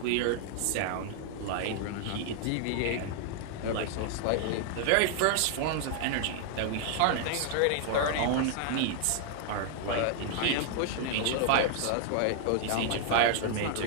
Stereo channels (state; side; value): different; both; correlation 0.00